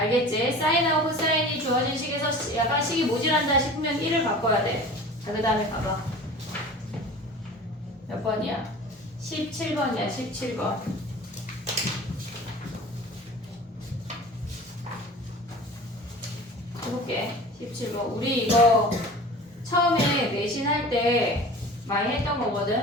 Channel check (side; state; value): both; normal; correlation 0.39